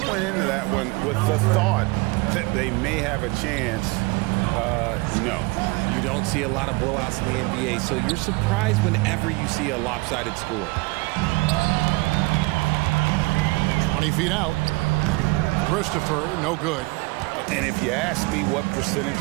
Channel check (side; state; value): left; quieter; 24.7 dB